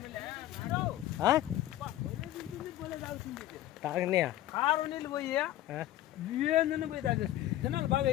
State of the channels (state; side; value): quieter; right; 14.1 dB